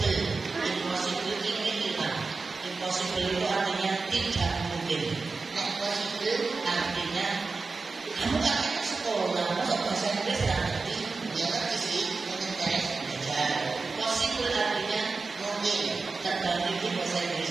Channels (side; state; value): left; quieter; 4.1 dB